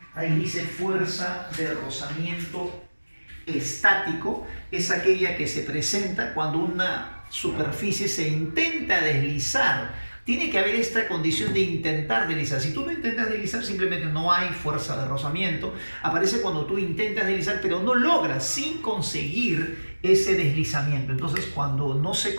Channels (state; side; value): inverted; both; correlation -1.00